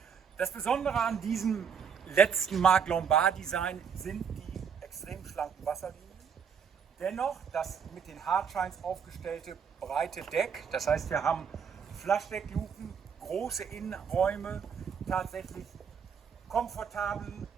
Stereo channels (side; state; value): left; quieter; 6.9 dB